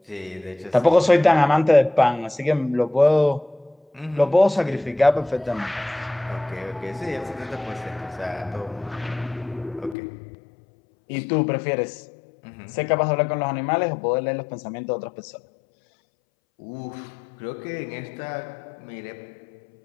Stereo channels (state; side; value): drops out; right; at 10.0 s